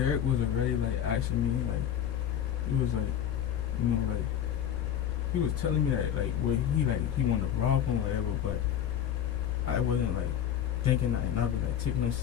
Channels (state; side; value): quieter; right; 9.9 dB